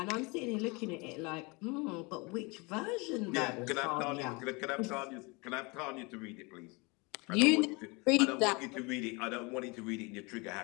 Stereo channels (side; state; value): right; quieter; 27.8 dB